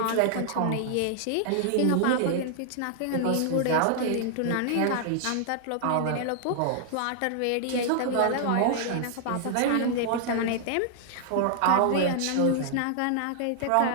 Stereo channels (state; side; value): different; both; correlation -0.01